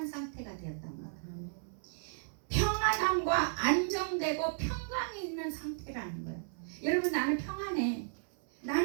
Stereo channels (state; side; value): silent; left; 55 dB below the other